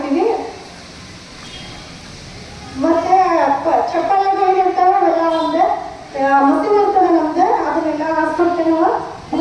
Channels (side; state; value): both; identical; correlation 1.00